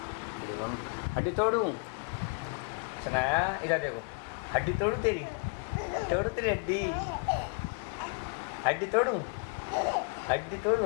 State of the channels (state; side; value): quieter; right; 33.6 dB